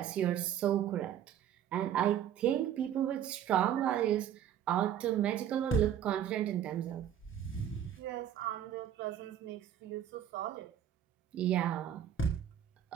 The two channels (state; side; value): quieter; left; 9.9 dB